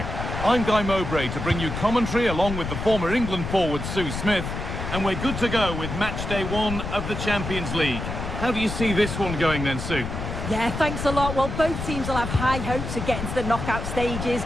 I'm Guy Mowbray to bring you commentary along with the former England forward Sue Smith, and we're good to go with match day 1 of the Champions League. How do you see this one going then, Sue? Yeah, thanks a lot. Well, both teams will have high hopes of getting to the knockout stages.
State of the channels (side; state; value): left; noise; rumble, 5 dB below the sound